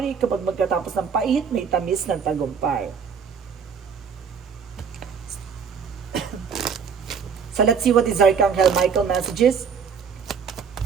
Kapag magkatapos ng pait, may tamis ng tagumpay. So, let's see what is Archangel Michael messages.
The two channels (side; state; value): left; quieter; 6.4 dB